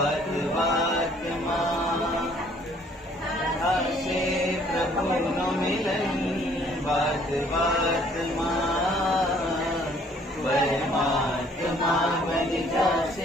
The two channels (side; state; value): both; normal; correlation 0.60